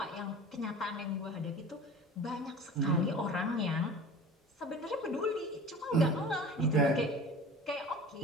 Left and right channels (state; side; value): normal; both; correlation 0.39